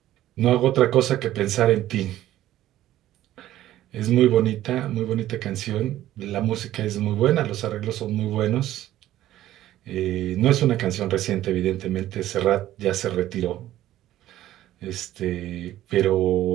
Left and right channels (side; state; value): left; quieter; 13.7 dB